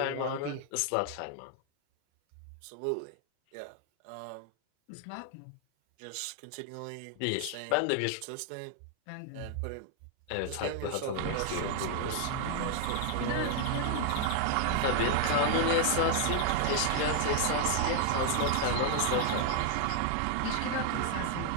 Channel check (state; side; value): different; both; correlation 0.00